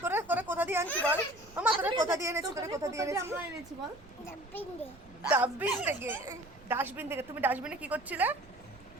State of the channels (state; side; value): noise; right; rumble, 22 dB below the sound